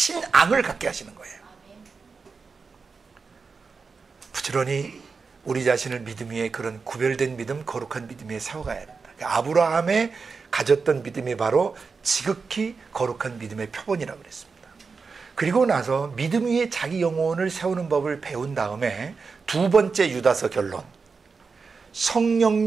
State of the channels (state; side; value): quieter; left; 4.9 dB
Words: 갖게 하시는 거예요. 부지런히 우리 자신을 믿음 위에 그런 구별된 믿음, 거룩한 믿음 위에 세워가야 된다. 그러니까 아브라함의 가졌던 믿음이 바로 지극히 거룩한 믿음의 표본이라고 그랬습니다. 그리고 나서 믿음 위에 자기 영혼을 세우는 법을 배운 다음에 두 번째 유다서 결론,